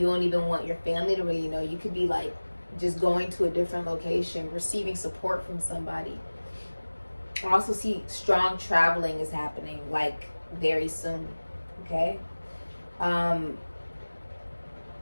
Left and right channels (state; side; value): inverted; both; correlation -1.00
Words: don't even want your family to really know. You could be like just going to a different location, receiving support from somebody. I also see strong traveling is happening like very soon. Okay,